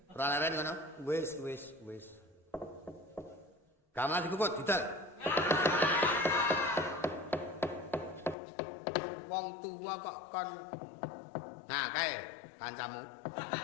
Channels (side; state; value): right; drops out; at 8.3 s